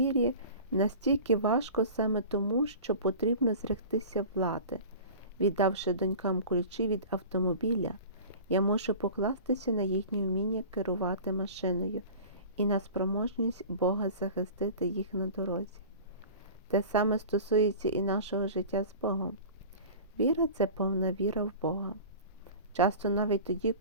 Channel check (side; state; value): both; inverted; correlation -0.38